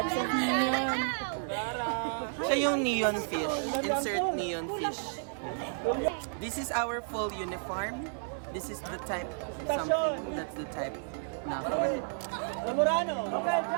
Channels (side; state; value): left; silent; digital silence